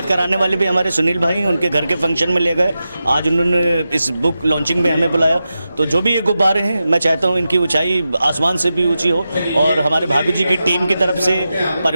कराने वाले भी हमारे सुनील भाई उनके घर के फंक्शन में ले गए, आज उन्होंने इस बुक लॉन्चिंग में हमें बुलाया। तो जो भी ये गुब्बारे हैं, मैं चाहता हूँ इनकी ऊंचाई आसमान से भी ऊंची हो। और हमारे भाभी जी की टीम की तरफ से,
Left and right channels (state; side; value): inverted; both; correlation -0.91